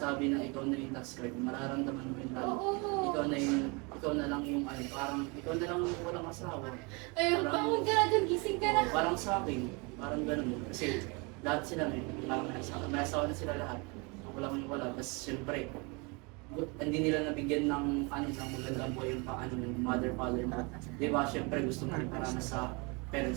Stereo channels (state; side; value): quieter; left; 29.8 dB